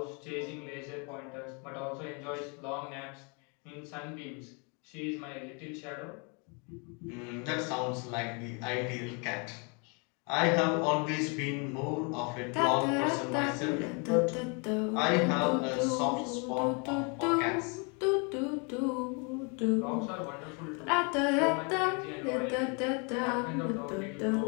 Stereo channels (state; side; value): quieter; right; 34.0 dB